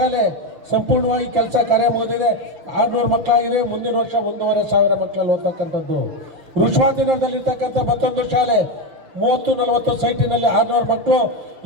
ಸಂಪೂರ್ಣವಾಗಿ ಕೆಲಸ ಕಾರ್ಯ ಮುಗಿದಿದೆ, 600 ಮಕ್ಕಳಾಗಿದೆ. ಮುಂದಿನ ವರ್ಷ 1,500 ಮಕ್ಕಳಲ್ಲಿ ಓದ್ತಕ್ಕಂಥದ್ದು. ಋಷವಾದಿನಗರದಲ್ಲಿರ್ತಕ್ಕಂಥ ಮತ್ತೊಂದು ಶಾಲೆ 30-40 ಸೈಟಿನಲ್ಲಿ 600 ಮಕ್ಕಳು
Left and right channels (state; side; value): late; left; 6.6 ms